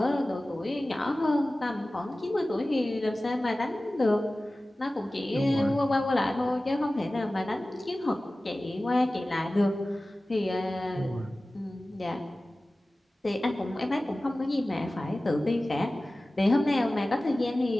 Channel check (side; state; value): both; normal; correlation 0.97